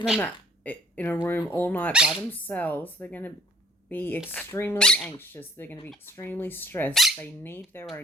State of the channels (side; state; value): both; normal; correlation 0.58